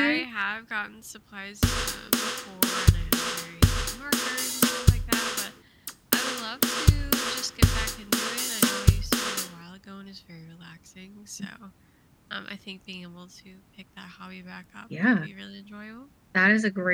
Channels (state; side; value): identical; both; correlation 1.00